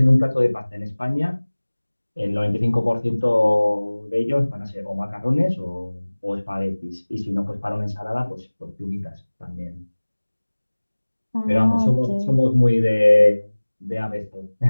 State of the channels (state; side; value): inverted; both; correlation -1.00